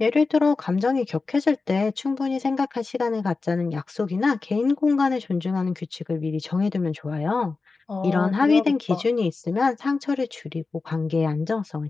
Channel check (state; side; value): quieter; right; 4.0 dB